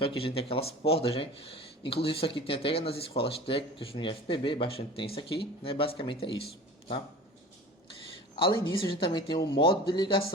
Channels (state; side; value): normal; both; correlation 0.39